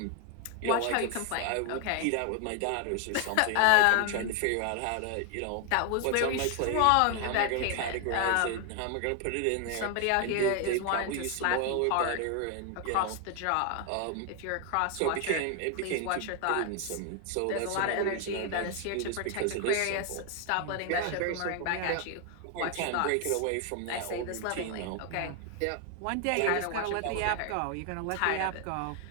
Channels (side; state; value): both; different; correlation 0.01